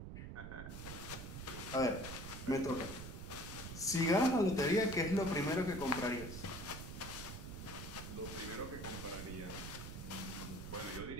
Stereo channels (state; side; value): noise; right; rumble, 8 dB below the sound